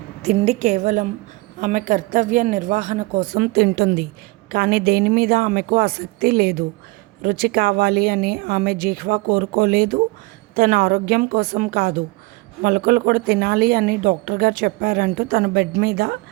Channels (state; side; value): quieter; left; 23.9 dB